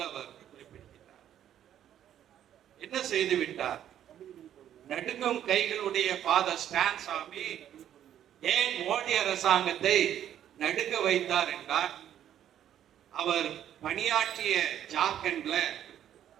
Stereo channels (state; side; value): quieter; left; 10.7 dB